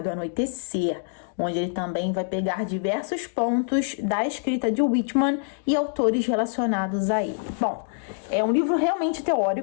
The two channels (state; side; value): silent; right; digital silence